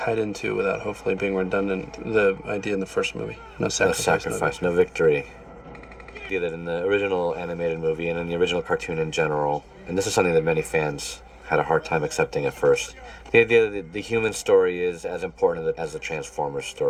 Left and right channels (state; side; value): identical; both; correlation 1.00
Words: into, without hopefully being redundant, the idea in the first movie. No sacrifice, no victory. The idea that in the original animated movie and in the original cartoon in general, and this is something that many fans had a hard time accepting at first, the idea that the human story is as important as the Transformers